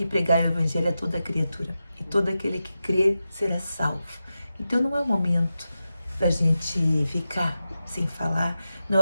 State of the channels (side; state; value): both; inverted; correlation -0.91